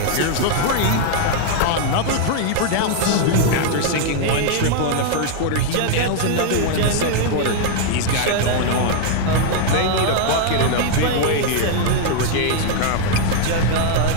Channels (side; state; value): both; different; correlation 0.00